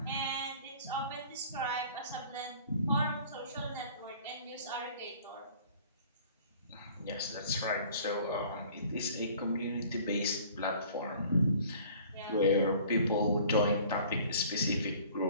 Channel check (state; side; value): inverted; both; correlation -0.50